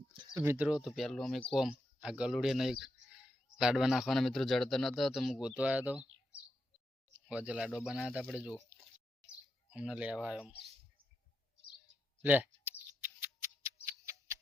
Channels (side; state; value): both; normal; correlation 0.85